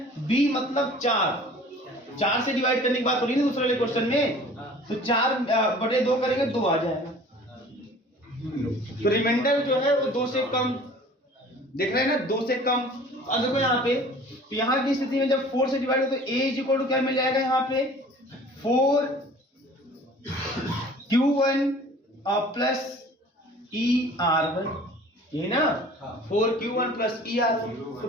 b, मतलब 4 से डिवाइड करने की बात हो रही है ना दूसरे वाले क्वेश्चन में, तो 4/2 करेंगे 2 आ जाएगा। तो रिमाइंडर जो है वो 2 से कम, देख रहे हैं ना, 2 से कम। अब देखो यहाँ पे, तो यहाँ की स्थिति में जब 4 से डिवाइड हो तो a = क्या मिल जाएगा? यहाँ पे 4q1 + ER1, ये ना 4q1 + ER1। तो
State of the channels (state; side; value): normal; both; correlation 0.47